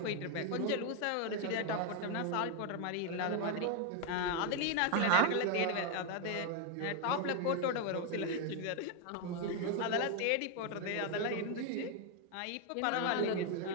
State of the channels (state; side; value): different; both; correlation 0.01